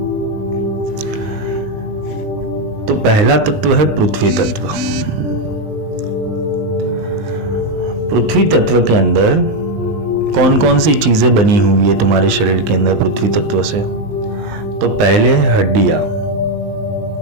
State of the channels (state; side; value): late; left; 19 ms